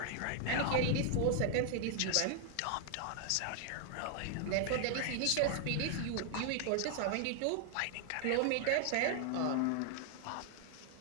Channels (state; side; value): different; both; correlation 0.00